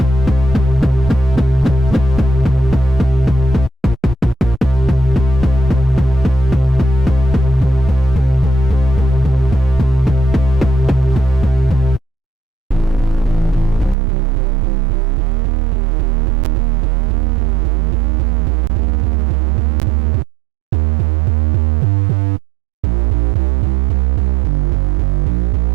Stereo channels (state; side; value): drops out; left; at 14.0 s